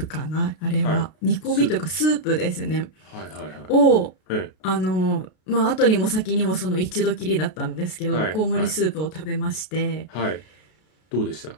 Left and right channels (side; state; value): right; late; 33 ms